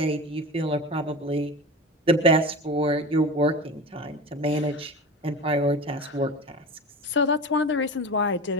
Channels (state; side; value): normal; both; correlation 0.31